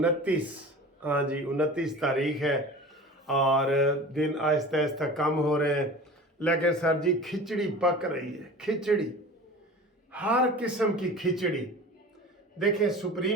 हाँ जी, 29 तारीख है और दिन आहिस्ता आहिस्ता कम हो रहे हैं। लेकिन सर जी, खिचड़ी पक रही है। खिचड़ी, हर किस्म की खिचड़ी। देखें,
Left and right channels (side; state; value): both; normal; correlation 0.38